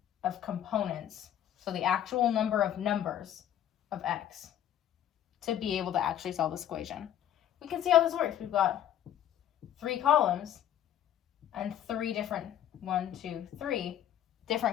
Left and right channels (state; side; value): quieter; right; 10.9 dB